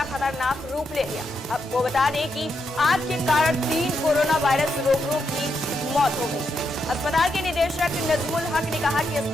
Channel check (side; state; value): both; normal; correlation 0.82